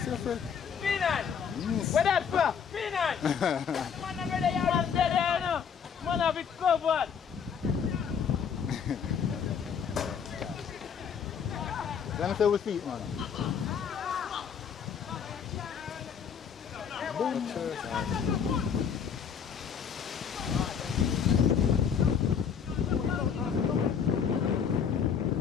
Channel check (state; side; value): quieter; right; 7.1 dB